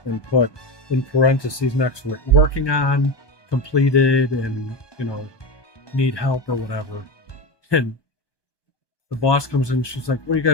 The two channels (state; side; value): late; right; 1.2 ms